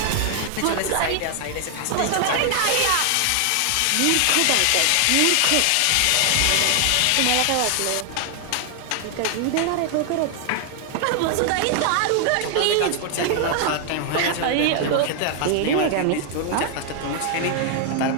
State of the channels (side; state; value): both; different; correlation 0.00